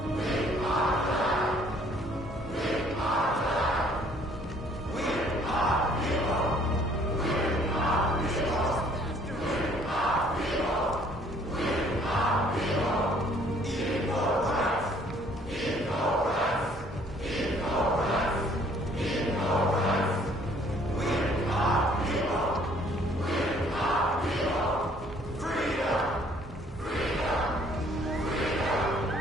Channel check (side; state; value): both; normal; correlation 0.60